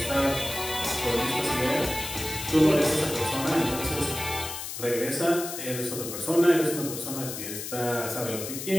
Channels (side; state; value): left; noise; hiss, 7 dB below the sound